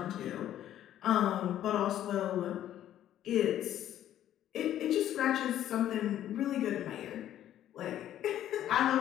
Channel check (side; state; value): right; quieter; 11.8 dB